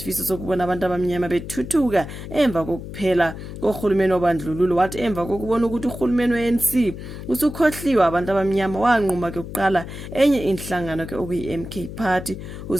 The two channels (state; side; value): noise; left; hum, 10 dB below the sound